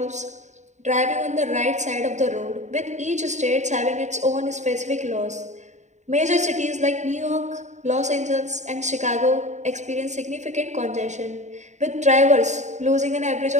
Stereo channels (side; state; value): left; late; 0.34 ms